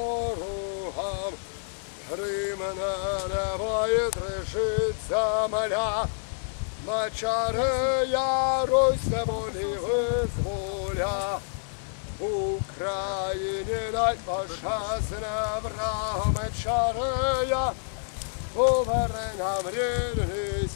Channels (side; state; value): right; silent; digital silence